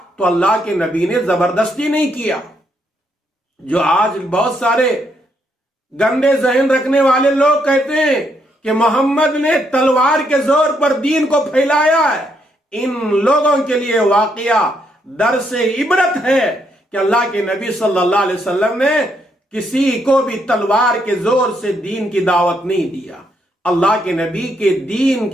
تو اللہ کے نبی نے زبردستی نہیں کیا۔ جو آج بہت سارے گندے ذہن رکھنے والے لوگ کہتے ہیں کہ محمد نے تلوار کے زور پر دین کو پھیلایا ہے، ان لوگوں کے لیے واقعہ درس عبرت ہے کہ اللہ کے نبی صلی اللہ علیہ وسلم نے کسی کو بھی تلوار کے زور سے دین کی دعوت نہیں دیا۔ اللہ کے نبی کے دین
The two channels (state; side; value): normal; both; correlation 0.75